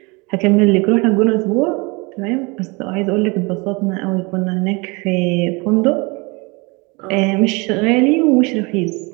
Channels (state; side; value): quieter; left; 27.7 dB